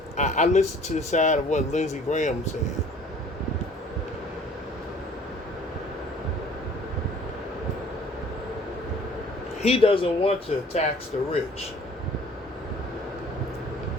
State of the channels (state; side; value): normal; both; correlation 0.52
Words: I listened to the side of what Lindsey Graham said. He doesn't want to tax the rich.